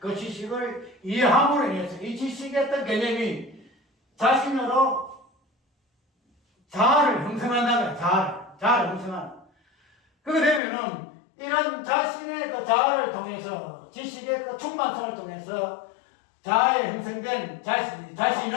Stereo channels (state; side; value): drops out; right; at 10.6 s